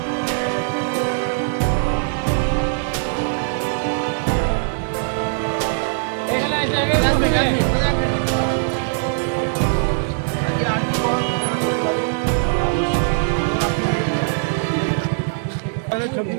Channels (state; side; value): silent; left; digital silence